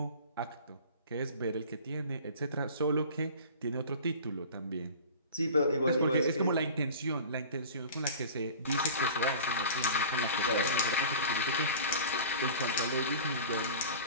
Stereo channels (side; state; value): both; inverted; correlation -0.39